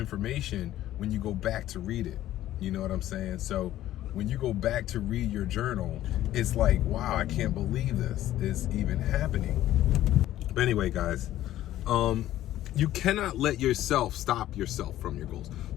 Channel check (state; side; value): quieter; right; 13.7 dB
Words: when you go back to read it. You know what I'm saying? So when you go back to read your journal, it's like, wow, I can't believe this is even happening. But anyway, guys, you cannot let yourself stop yourself from your goals.